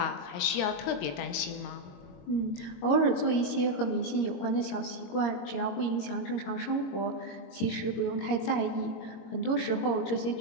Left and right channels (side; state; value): right; late; 22 ms